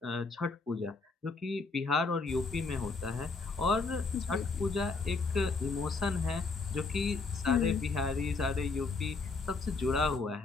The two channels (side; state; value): right; quieter; 4.1 dB